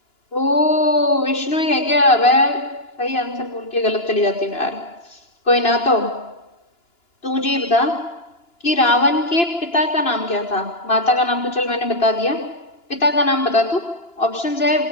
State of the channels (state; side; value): late; right; 2.9 ms